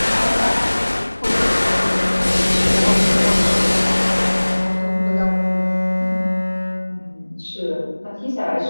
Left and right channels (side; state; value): both; inverted; correlation -1.00